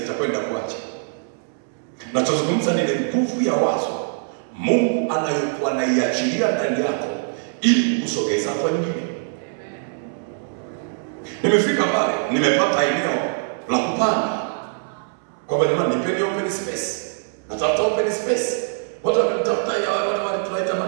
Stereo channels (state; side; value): silent; left; 64 dB below the other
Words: kuacha. Nachozungumza ni nguvu ya wazo Mungu anayokuwa anaiachilia ndani yako ili kusogeza kwa nyingine. Nimefika pale, nimepata eneo la kupanga. Kwamba ni nipeni open space. Natafuta open space. Watu wakitafuta ya wale tunaita